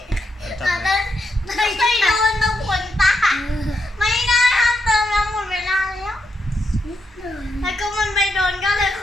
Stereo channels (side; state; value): both; normal; correlation 0.82